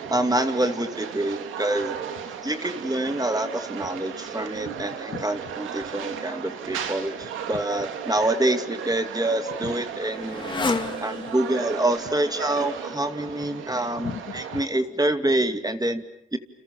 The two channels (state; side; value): normal; both; correlation 0.64